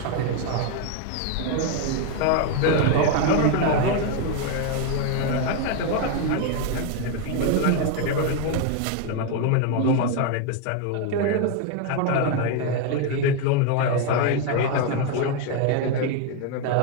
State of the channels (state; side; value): different; both; correlation 0.01